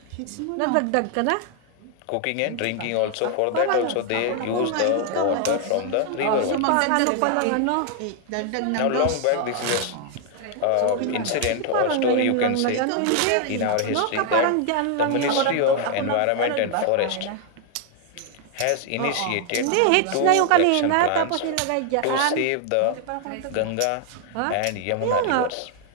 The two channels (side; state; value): both; different; correlation 0.00